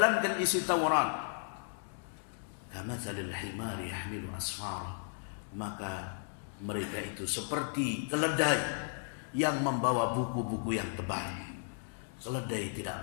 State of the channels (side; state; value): right; silent; digital silence